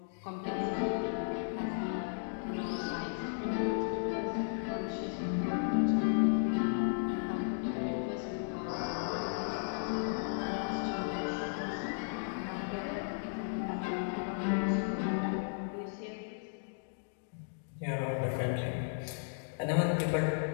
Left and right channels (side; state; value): right; silent; digital silence